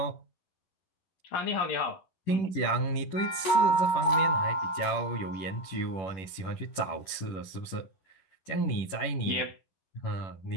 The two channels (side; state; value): right; late; 11 ms